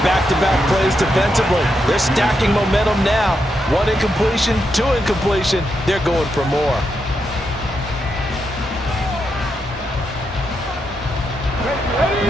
back-to-back plays defensively. They're stacking momentum now. 1 incompletion, 2 incompletion. They're going for more.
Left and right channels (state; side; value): normal; both; correlation 0.83